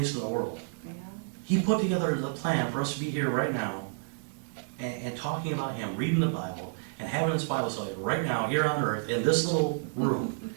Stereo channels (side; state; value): left; silent; digital silence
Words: of the world. yeah. He put together the plan for us to be here right now and talking about him, reading the Bible, and having this Bible study right now, here on earth, in this little room.